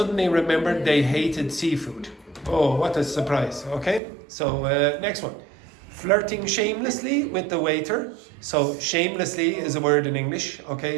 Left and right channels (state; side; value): drops out; left; at 4.0 s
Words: remembered they hated seafood. Oh, what a surprise. Okay? So next one. Flirting shamelessly with the waiter. So shamelessly is a word in English.